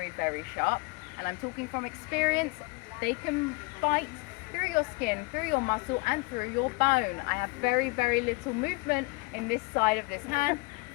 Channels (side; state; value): right; quieter; 26.6 dB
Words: very sharp, and I'm talking from experience. They can bite through your skin, through your muscle, and through your bone. I have very, very little movement in this side of this hand